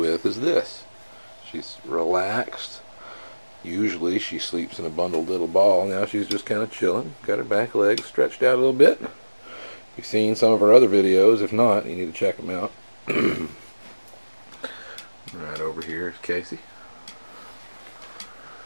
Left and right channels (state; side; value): inverted; both; correlation -1.00